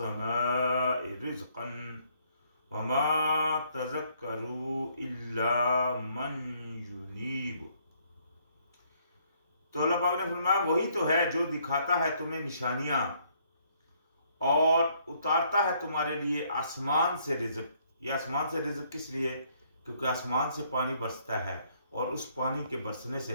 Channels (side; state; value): both; inverted; correlation -0.67